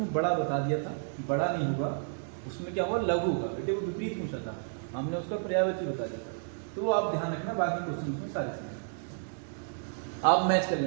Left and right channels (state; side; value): silent; left; digital silence